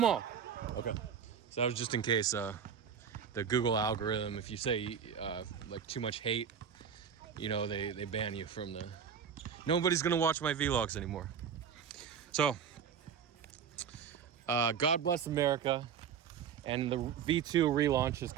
all. Okay. So that was just in case the Google algorithm, if you say like too much hate, you know, they ban you from the... Nobody's gonna watch my vlogs anymore. So, God bless America, and the V2 relaunch is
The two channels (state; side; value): quieter; left; 7.5 dB